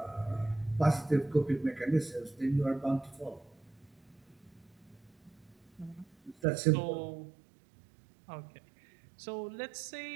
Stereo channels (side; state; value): left; drops out; at 6.4 s